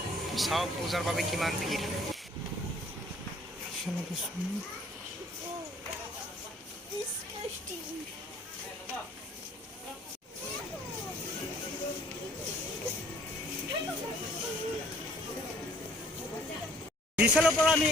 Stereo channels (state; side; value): normal; both; correlation 0.58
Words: চাওক পূজাৰ বাবে কিমান ভিৰ। বিশালৰ পৰা আমি